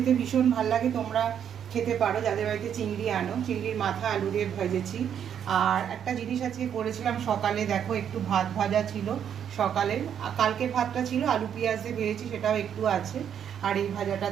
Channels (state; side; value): quieter; left; 8.8 dB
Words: ভীষণ ভালো লাগে। তোমরা খেতে পারো যাদের বাড়িতে চিংড়ি আনো। চিংড়ির মাথা আলু দিয়ে ভেজেছি। আর একটা জিনিস আজকে করেছিলাম সকালে, দেখো একটু ভাত ভাজা ছিল সকালের, কালকের ভাতটা ছিল আলু পেঁয়াজ দিয়ে ভেজেছি, সেটাও একটু আছে। আর এই ভাজাটা